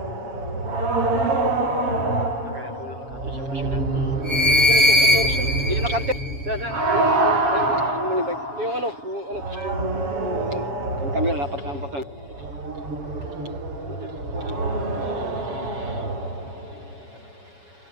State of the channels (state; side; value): late; left; 7.2 ms